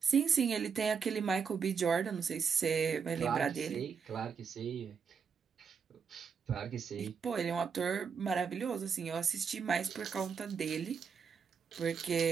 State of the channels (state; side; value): quieter; left; 6.1 dB